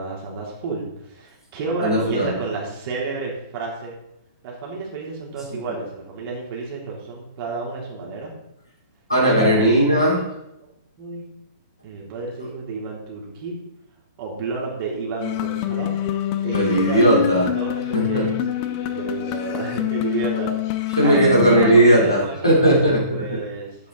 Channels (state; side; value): inverted; both; correlation -0.45